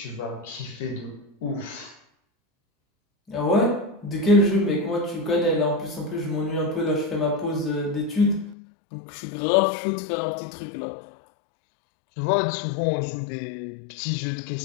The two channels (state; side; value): drops out; right; at 8.6 s